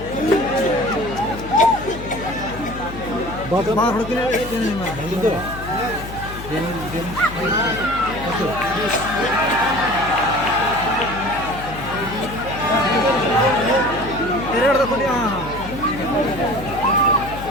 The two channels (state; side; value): noise; left; hum, 11 dB below the sound